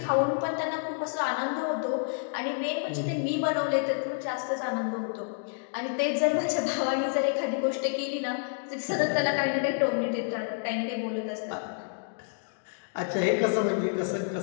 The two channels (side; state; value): right; silent; digital silence